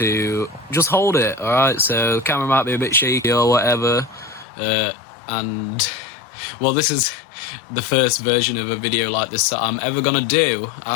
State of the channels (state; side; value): drops out; right; at 4.5 s